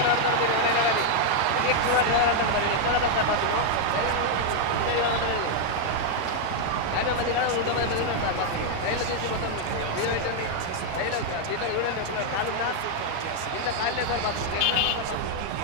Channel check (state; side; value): different; both; correlation 0.00